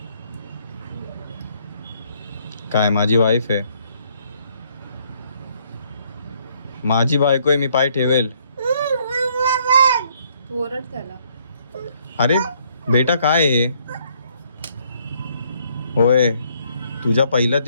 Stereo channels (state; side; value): inverted; both; correlation -0.67